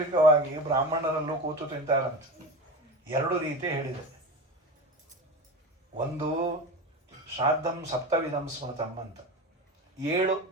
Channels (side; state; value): both; normal; correlation 0.26